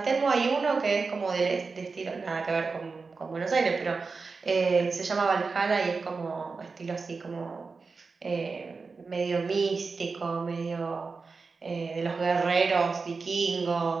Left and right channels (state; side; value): quieter; left; 4.4 dB